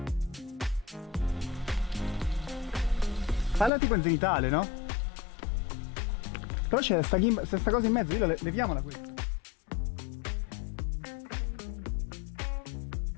Falla tipo in zenitale, no? Però c'è sta cosa in mezzo, io leviamola qui.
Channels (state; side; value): drops out; right; at 3.7 s